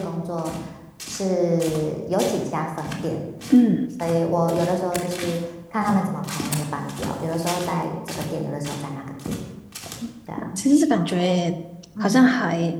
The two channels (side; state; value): both; identical; correlation 1.00